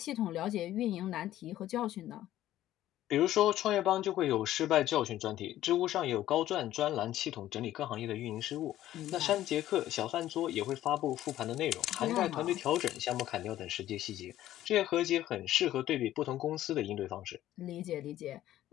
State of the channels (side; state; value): right; quieter; 13.5 dB